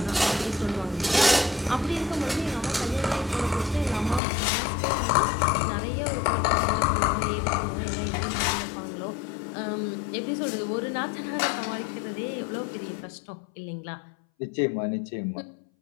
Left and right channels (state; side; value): drops out; right; at 4.2 s